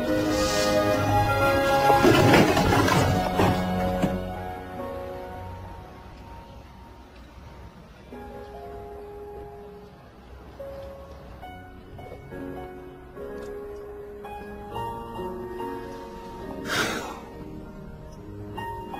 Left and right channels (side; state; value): both; identical; correlation 1.00